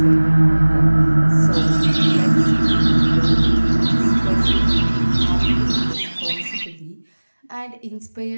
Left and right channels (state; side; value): inverted; both; correlation -1.00